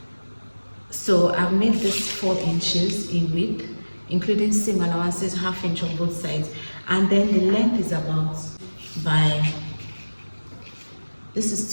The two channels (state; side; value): inverted; both; correlation -1.00